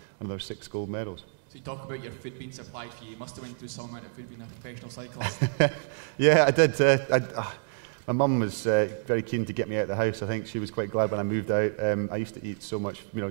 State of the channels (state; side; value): silent; left; digital silence